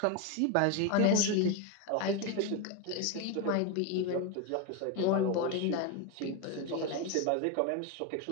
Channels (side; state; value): both; different; correlation 0.02